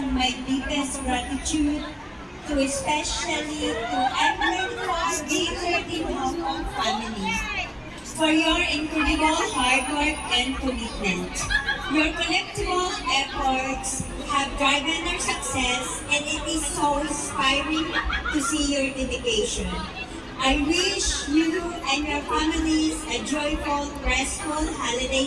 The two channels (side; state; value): both; identical; correlation 1.00